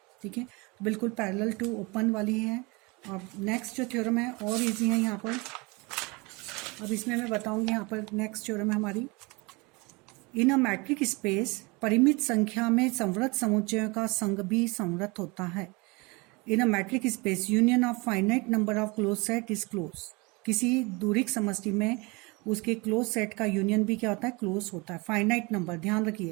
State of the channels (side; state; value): left; quieter; 26.7 dB